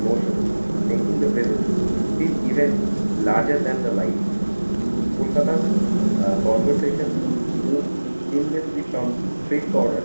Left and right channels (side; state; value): both; inverted; correlation -1.00